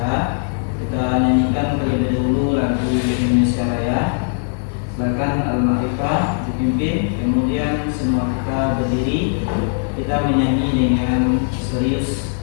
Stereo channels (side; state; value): right; silent; 55 dB below the other